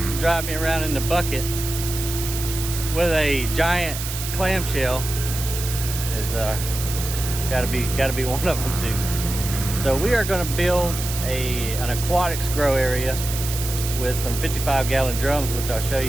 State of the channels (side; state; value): right; noise; hiss, 7 dB below the sound